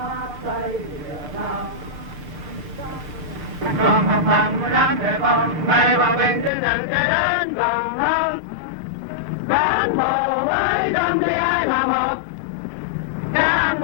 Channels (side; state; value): right; drops out; at 6.5 s